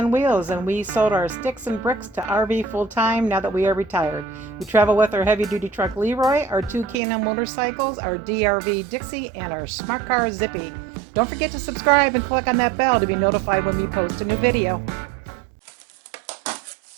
Wheels, and we sold our sticks and bricks to RV full-time now that we are retired. We travel with our heavy-duty truck Leroy, our two K&N motorcycles, our DRV Dixie, and our smart car Zippy. Don't forget to subscribe and click on that bell to be notified when we post a new video.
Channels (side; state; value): left; drops out; at 7.0 s